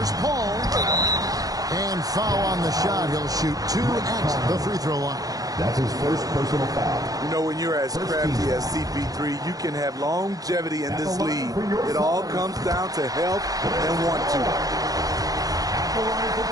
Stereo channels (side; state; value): left; late; 0.18 ms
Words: Paul. And foul on the shot. He'll shoot 2 at the free throw line. That's his first personal foul. You know, when you're as crafty as CP3, you can have longevity in this league. It all comes down to health and want to.